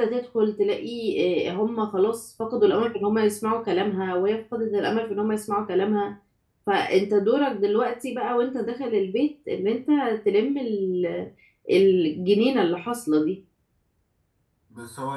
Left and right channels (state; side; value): identical; both; correlation 1.00